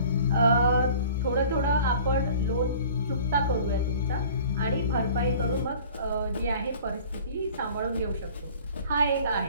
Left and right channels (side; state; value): both; inverted; correlation -0.46